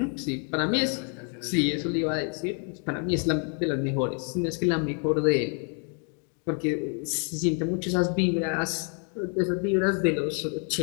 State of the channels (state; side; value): quieter; right; 39.7 dB